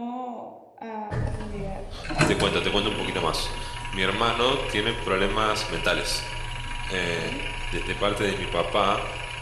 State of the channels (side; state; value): both; identical; correlation 1.00